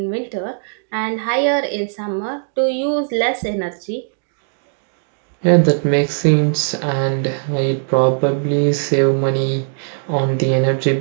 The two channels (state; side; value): silent; left; digital silence